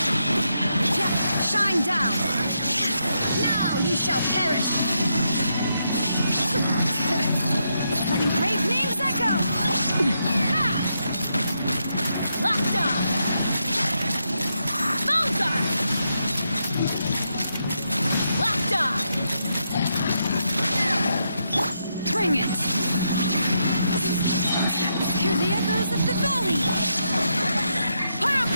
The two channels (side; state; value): both; inverted; correlation -0.81